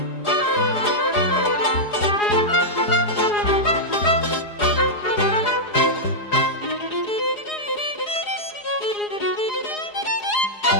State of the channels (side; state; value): right; late; 4.8 ms